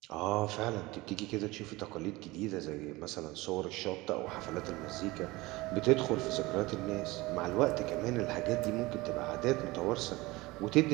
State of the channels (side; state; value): left; quieter; 21.2 dB